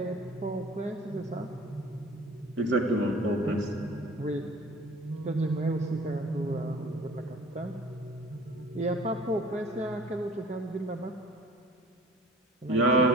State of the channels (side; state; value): both; normal; correlation 0.47